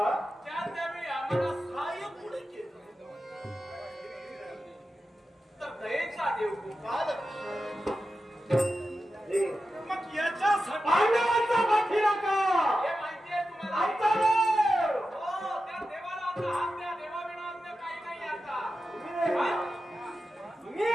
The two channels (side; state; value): both; normal; correlation 0.92